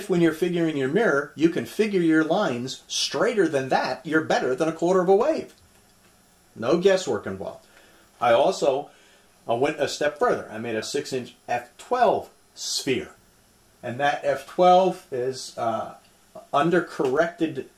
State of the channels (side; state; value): both; identical; correlation 1.00